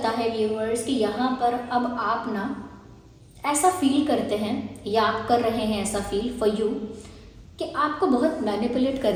है व्यूअर्स कि यहाँ पर अब आप ना ऐसा फील करते हैं या आप कर रहे हैं ऐसा फील फॉर यू कि आपको बहुत मैनिपुलेट कर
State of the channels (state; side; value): identical; both; correlation 1.00